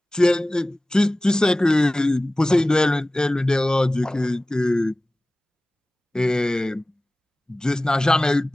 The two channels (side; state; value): both; normal; correlation 0.97